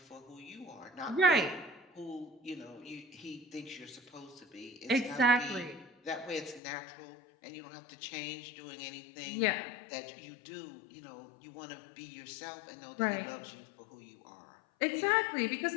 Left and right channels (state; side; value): drops out; right; at 6.6 s